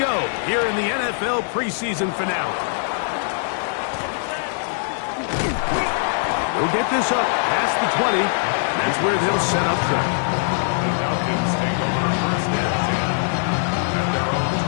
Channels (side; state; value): right; silent; digital silence